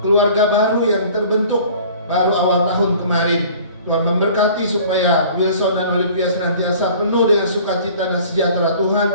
baru yang terbentuk baru awal tahun kemarin. Tuhan memberkati supaya Wilson dan Olivia senantiasa penuh dengan sukacita dan sejahtera Tuhan,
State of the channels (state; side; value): inverted; both; correlation -0.48